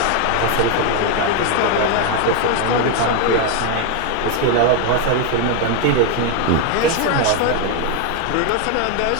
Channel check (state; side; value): different; both; correlation 0.01